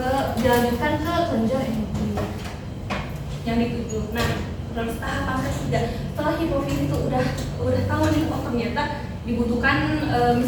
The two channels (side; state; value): both; identical; correlation 1.00